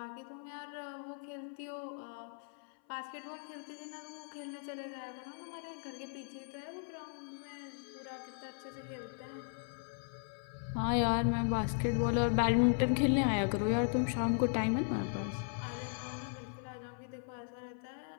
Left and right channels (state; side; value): silent; right; 53 dB below the other